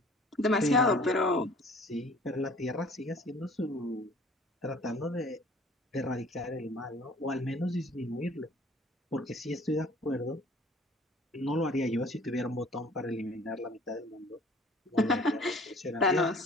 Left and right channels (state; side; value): normal; both; correlation 0.51